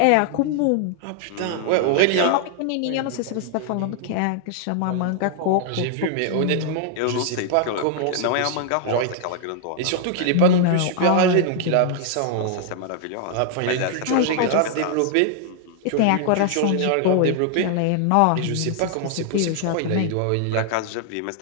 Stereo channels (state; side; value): different; both; correlation 0.00